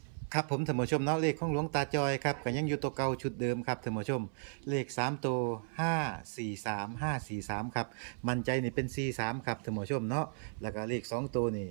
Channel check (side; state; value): left; silent; 55 dB below the other